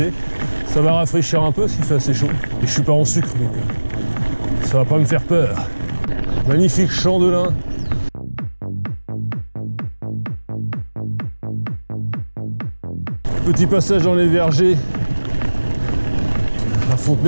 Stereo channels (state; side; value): inverted; both; correlation -1.00